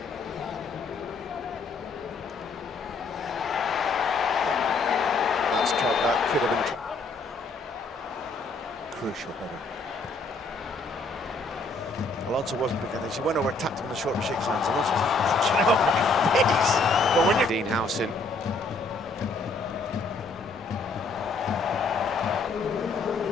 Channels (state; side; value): quieter; right; 3.5 dB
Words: That could have been crucial header. Alonso wasn't big at this. He went over, tapped him in the shoulder, shakes hands. Alonso was like, get out of my face. But when you're Dean Howson.